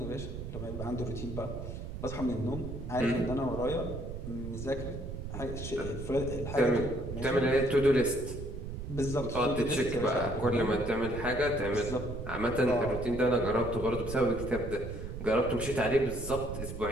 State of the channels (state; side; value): noise; right; rumble, 7 dB below the sound